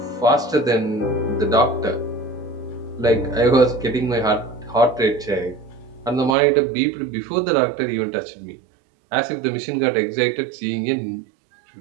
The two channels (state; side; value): drops out; left; at 6.4 s